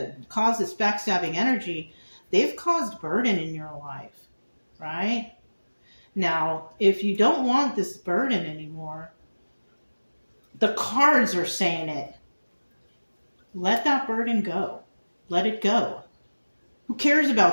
caused this backstabbing energy, they've caused burden in your life, right? Now, if you don't want this burden anymore, the cards are saying it. Let that burden go. Let it go. Who cares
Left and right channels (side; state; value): both; inverted; correlation -1.00